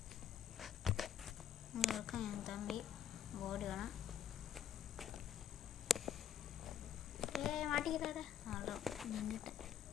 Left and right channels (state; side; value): quieter; right; 8.2 dB